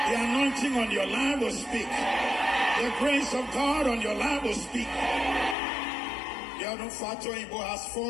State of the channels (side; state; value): right; drops out; at 5.6 s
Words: anointing on your life will speak. The grace of God on your life will speak. Yanufato Ibo has